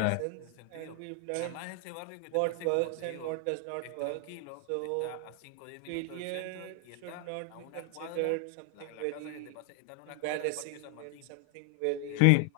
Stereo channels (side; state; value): both; different; correlation 0.00